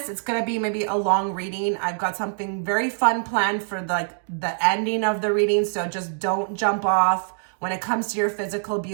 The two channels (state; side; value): silent; left; digital silence